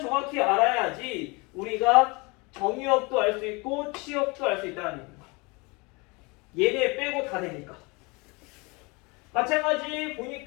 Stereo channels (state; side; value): quieter; right; 27.5 dB